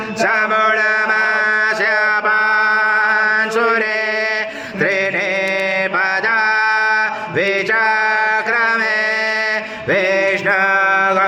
समूढमास्य पांशुरे त्रीणि पदा विचक्रमे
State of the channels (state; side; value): identical; both; correlation 1.00